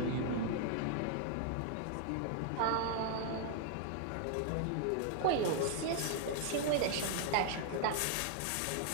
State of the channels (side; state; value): both; different; correlation 0.00